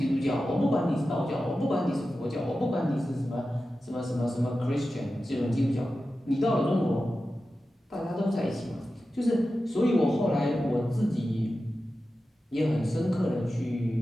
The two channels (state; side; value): normal; both; correlation 0.93